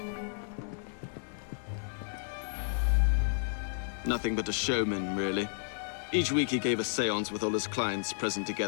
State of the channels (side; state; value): right; silent; digital silence